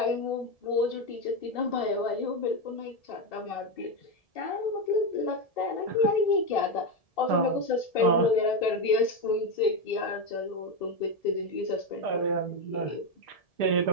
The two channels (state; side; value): late; right; 1.7 ms